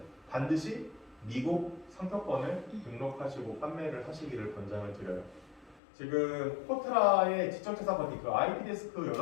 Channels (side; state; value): right; drops out; at 5.8 s